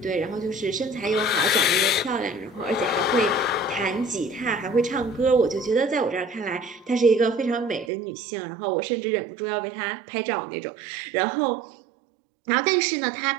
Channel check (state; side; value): drops out; left; at 7.9 s